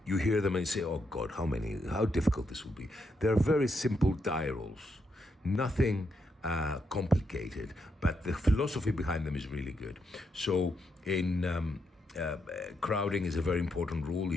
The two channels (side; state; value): both; normal; correlation 0.80